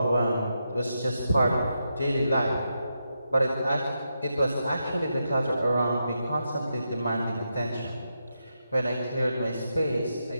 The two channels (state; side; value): inverted; both; correlation -0.85